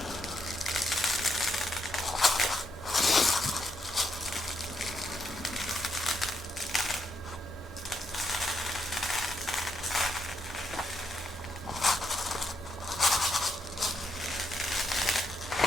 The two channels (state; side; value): normal; both; correlation 0.79